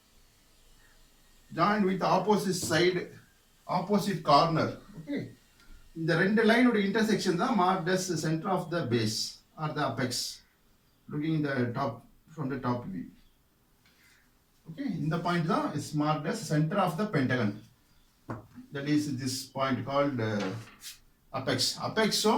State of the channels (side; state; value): both; identical; correlation 1.00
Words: Join with the opposite side, opposite corner. Okay. The ரெண்டு line ஓட intersection தான் marked as the center of the base or the apex. Looking in the top from the top view. Okay. இந்த point தான் is marked as center of the pentagon. That is this point called apex. Apex so